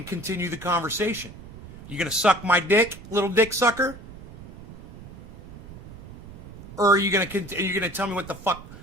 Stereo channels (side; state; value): right; noise; rumble, 17 dB below the sound